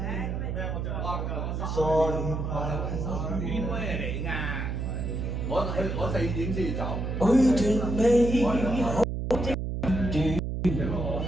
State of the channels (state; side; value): noise; right; hum, 2 dB below the sound